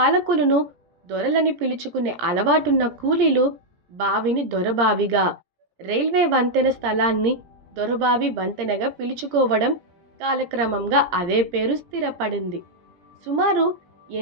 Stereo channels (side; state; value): left; late; 17 ms